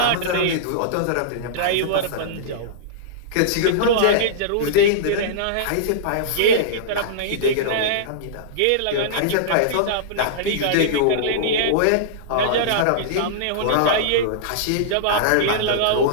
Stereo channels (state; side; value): different; both; correlation -0.03